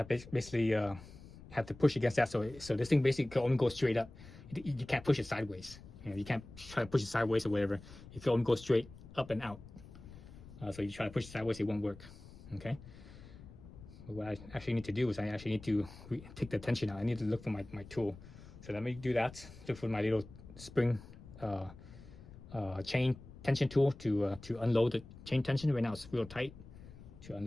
basically have to push against that. So this thing basically can only go straight up. You can't push it sideways. You know, you can't try to push it sideways or whatever. It can only go straight up and out. So you try to push it sideways, it won't work. Okay. But what I actually need to do is I actually need to take the tension out. I need to look for my tool. So let me do that. Look for my little spring chain tension tool to unload the chain tension. Right now it's real tight. To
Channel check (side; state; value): left; noise; rumble, 17 dB below the sound